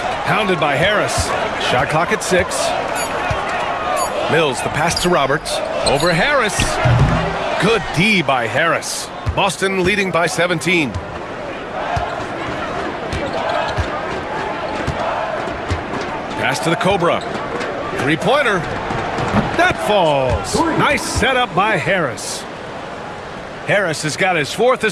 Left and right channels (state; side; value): identical; both; correlation 1.00